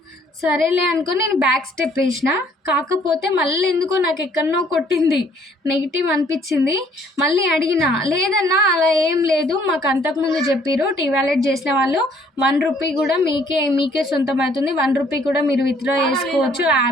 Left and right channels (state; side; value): normal; both; correlation 0.61